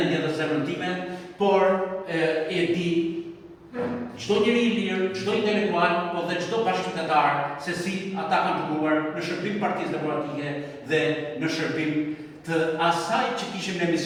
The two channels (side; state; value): both; identical; correlation 1.00